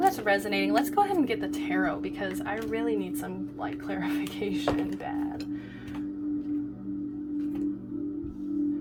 resonating. Let's go ahead and get the tarot, because I really need some, like, clarification bad.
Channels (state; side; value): identical; both; correlation 1.00